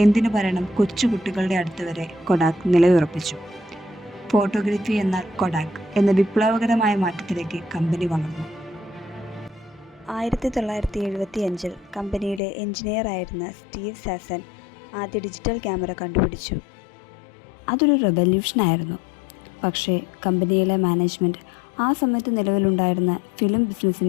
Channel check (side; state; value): right; drops out; at 12.4 s